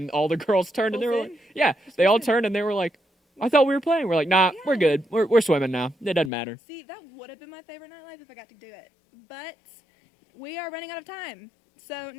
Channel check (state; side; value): drops out; right; at 6.3 s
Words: all the girls turned and they were like, Full "Yeah." They all turned and they were like, "I thought we were playing." We're like, "Nah, we're good. We're swimming now. It doesn't matter." See, that would have been my favorite nightlife if I got to do it. But we are running out of time. So